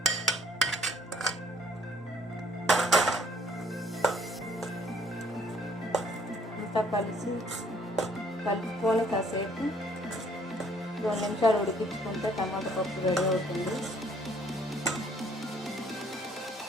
కలుపుకొని కాసేపు 2 నిమిషాలు ఉడికించుకుంటే టమాటా పప్పు రెడీ అవుతుంది.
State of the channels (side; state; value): both; normal; correlation 0.62